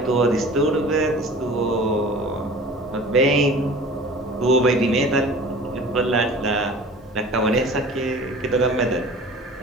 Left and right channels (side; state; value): both; normal; correlation 0.42